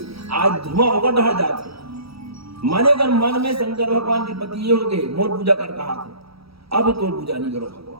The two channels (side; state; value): left; late; 0.76 ms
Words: आज धुआं होकर ढह जाते। माने अगर मन में शंकर भगवान के पति ये हो गए, मोर पूजा कर कहा थे, अब तो पूजा नहीं करो